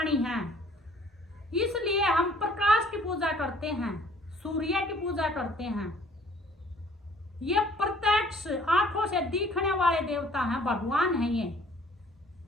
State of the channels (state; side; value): normal; both; correlation 0.57